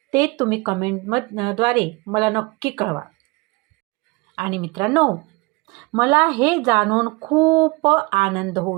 ते तुम्ही कमेंटद्वारे मला नक्की कळवा. आणि मित्रांनो, मला हे जाणून खूप आनंद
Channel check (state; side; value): quieter; left; 26.0 dB